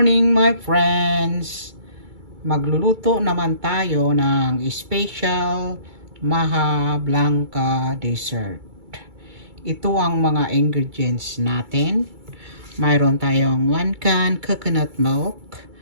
my friends! Magluluto naman tayo ng special MAJA BLANCA dessert. Ito ang mga ingredients natin. Mayroon tayong 1 can coconut milk,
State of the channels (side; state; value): left; late; 2.3 ms